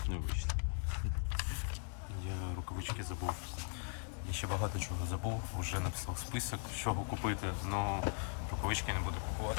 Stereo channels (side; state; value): right; silent; 52 dB below the other